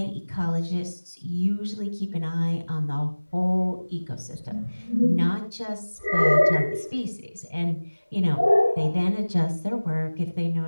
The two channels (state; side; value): inverted; both; correlation -1.00